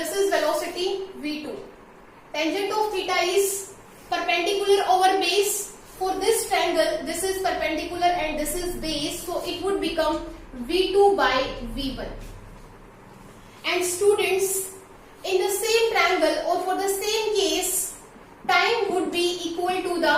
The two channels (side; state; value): both; identical; correlation 1.00